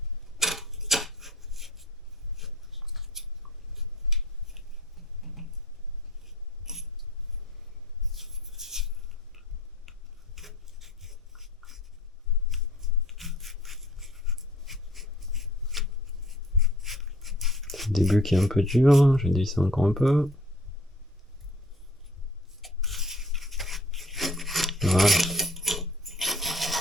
Le début qui est un peu dur, je vais dévisser encore un peu. Voilà.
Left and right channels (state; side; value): normal; both; correlation 0.53